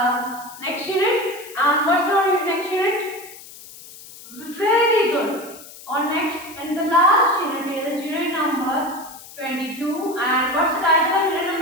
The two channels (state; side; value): noise; left; hiss, 17 dB below the sound